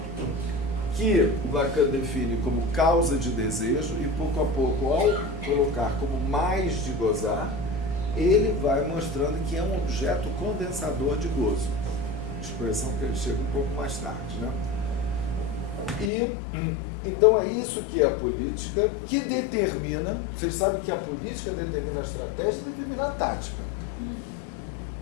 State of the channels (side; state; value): right; drops out; at 16.1 s